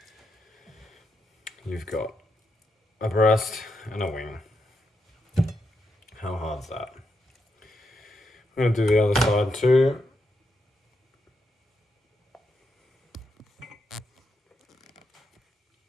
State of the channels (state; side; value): normal; both; correlation 0.82